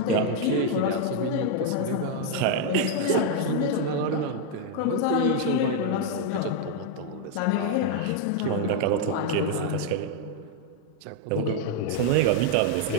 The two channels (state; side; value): different; both; correlation 0.00